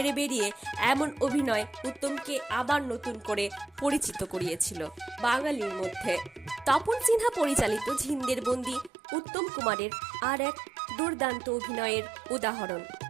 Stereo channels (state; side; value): drops out; left; at 8.9 s